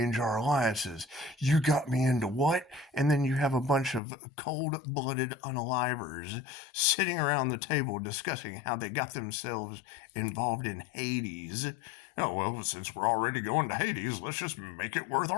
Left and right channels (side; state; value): right; drops out; at 4.0 s